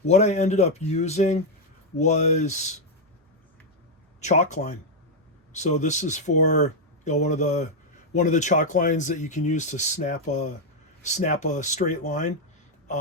what I ended up using was chalk line. So this is for one of the chalk lines that you can use to snap a straight line.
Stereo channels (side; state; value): both; normal; correlation 0.01